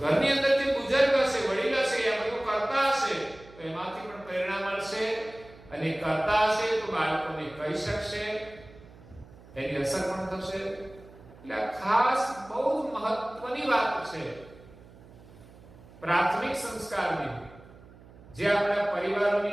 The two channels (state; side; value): noise; right; hum, 21 dB below the sound